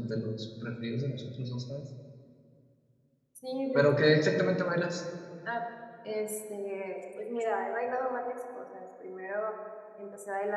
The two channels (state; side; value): identical; both; correlation 1.00